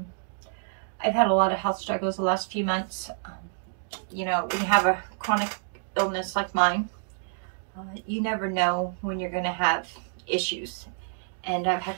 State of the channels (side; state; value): left; silent; digital silence